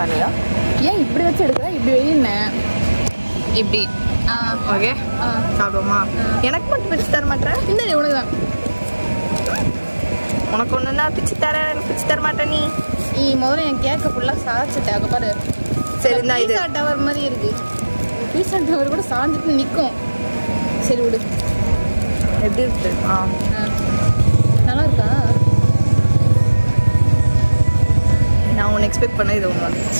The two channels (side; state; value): both; inverted; correlation -1.00